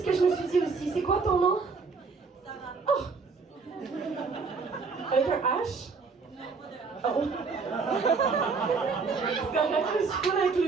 que je me suis dit aussi. C'est quoi ton nom? Oh! Avec un H? Oh! C'est correct, je suis pas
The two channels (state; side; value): quieter; left; 4.7 dB